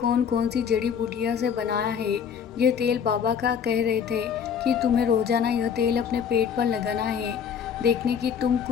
कौन सी जड़ी बूटियाँ से बनाया है यह तेल। बाबा का कह रहे थे कि तुम्हें रोज़ाना यह तेल अपने पेट पर लगाना है, देखने की तुम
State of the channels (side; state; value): right; quieter; 7.5 dB